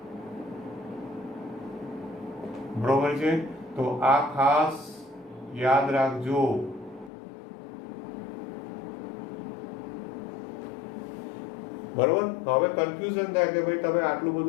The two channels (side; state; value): right; drops out; at 7.1 s